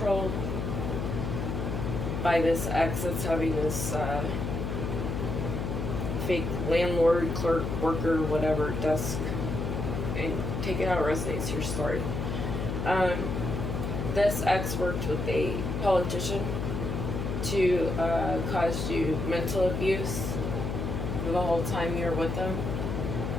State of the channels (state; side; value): noise; left; hum, 2 dB below the sound